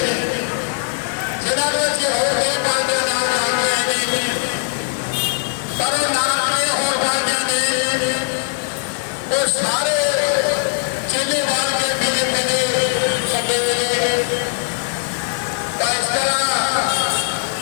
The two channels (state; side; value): silent; right; digital silence